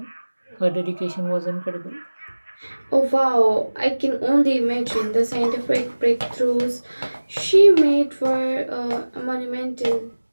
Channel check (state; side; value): inverted; both; correlation -1.00